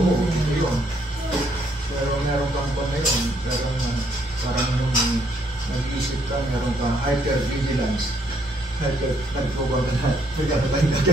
yun. Pero meron kang pa ngayon, parang yung nag-iisip ka, meron kang hyper-vigilance. Nagpubang ka na, nagkatapain ka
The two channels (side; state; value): both; normal; correlation 0.70